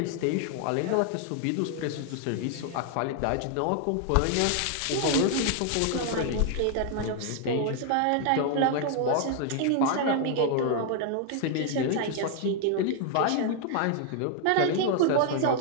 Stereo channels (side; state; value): both; different; correlation 0.00